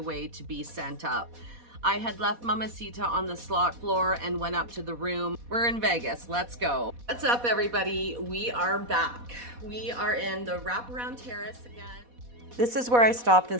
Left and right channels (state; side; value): late; left; 4.1 ms